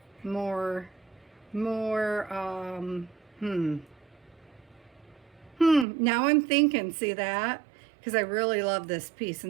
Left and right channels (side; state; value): left; drops out; at 5.9 s